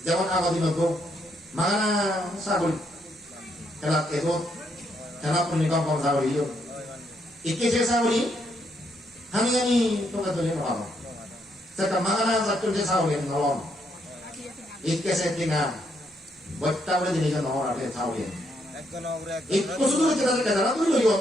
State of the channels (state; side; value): normal; both; correlation 0.75